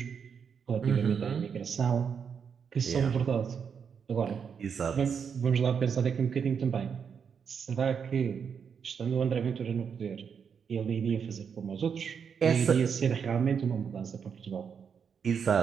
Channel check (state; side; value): quieter; left; 6.8 dB